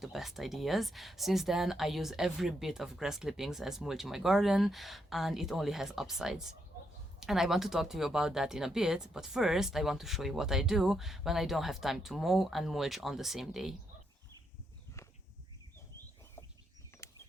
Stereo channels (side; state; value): both; normal; correlation 0.79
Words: the best ideas. Since then, I use every bit of grass clippings as mulch in my garden, and it only has upsides. And I want to talk to you about that in a bit, but first I want to show you what I do when I don't have time to mow and mulch on the same day.